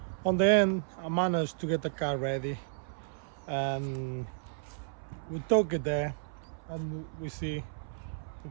On the end, I managed to get the car ready. And we took it there and we see, if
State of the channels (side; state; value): left; silent; 56 dB below the other